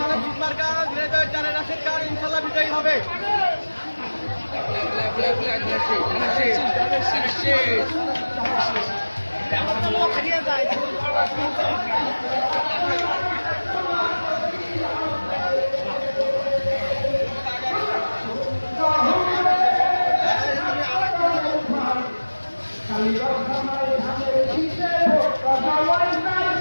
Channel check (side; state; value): both; inverted; correlation -1.00